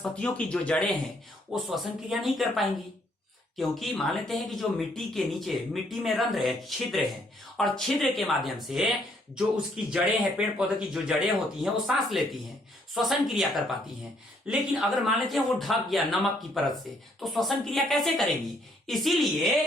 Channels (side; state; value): both; normal; correlation 0.68